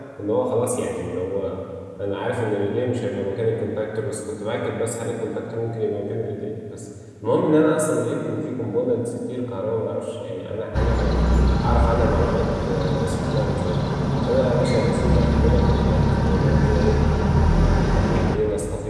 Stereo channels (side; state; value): both; identical; correlation 1.00